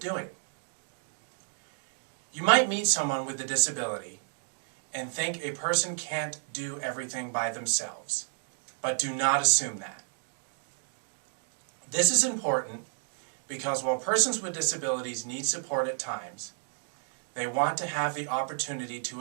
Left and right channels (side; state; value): left; silent; digital silence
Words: You might meet someone with a disability and think a person can't do everything by themselves, but do not assume that. This is important because while persons with disabilities need support at times, they want to have the opportunity